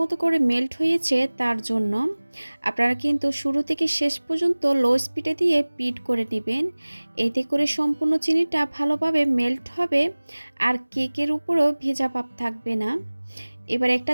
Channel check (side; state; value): both; inverted; correlation -1.00